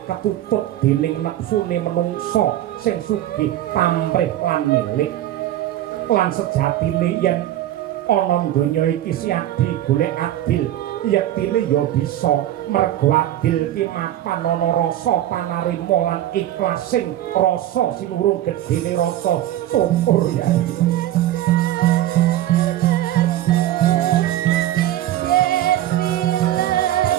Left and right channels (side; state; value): left; quieter; 13.1 dB